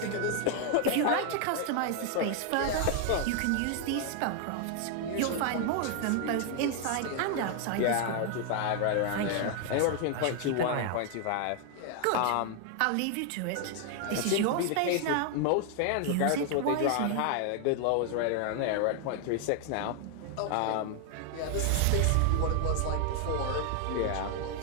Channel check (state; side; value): different; both; correlation 0.00